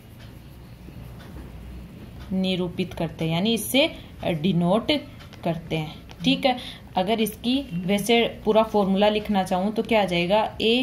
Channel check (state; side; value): identical; both; correlation 1.00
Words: निरूपित करते हैं, यानी इससे डिनोट करते हैं। ठीक है। अगर इसकी वैसे पूरा फॉर्मूला लिखना चाहूँ तो क्या आ जाएगा,